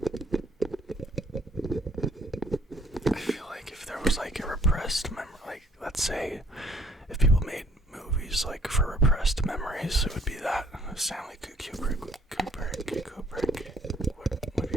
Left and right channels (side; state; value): both; normal; correlation 0.62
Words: I feel like if there was like a repressed memory, like let's say if people made movies like for repressed memories, it would be that Stanley Kubrick would be